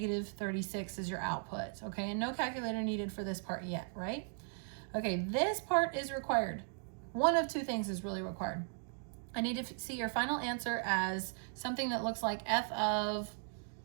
as your output. Okay, and no calculator needed for this part yet, right? Okay, this part is required. One of 2 things is really required. I need to see your final answer as something that looks like f of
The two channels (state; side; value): silent; left; 53 dB below the other